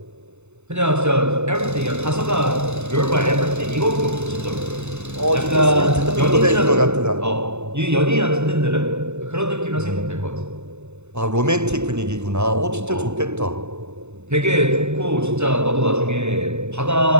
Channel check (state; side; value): late; left; 0.82 ms